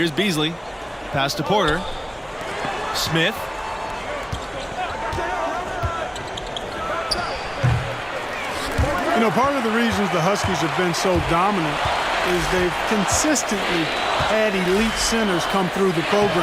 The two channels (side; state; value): both; identical; correlation 1.00